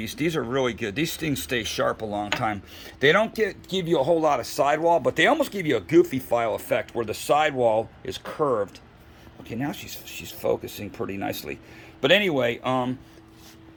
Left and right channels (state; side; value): identical; both; correlation 1.00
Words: These are really good. These things stay sharp a long time. They don't give you a whole lot of sidewall, but they almost give you a goofy file effect where the sidewall is curved. Okay, now she's focusing pretty nicely. But anyway,